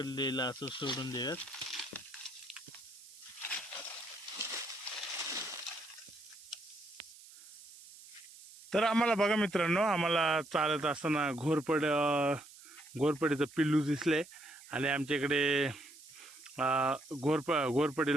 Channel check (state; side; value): noise; right; hiss, 20 dB below the sound